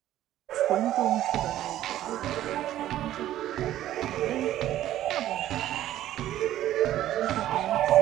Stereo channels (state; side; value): quieter; left; 13.1 dB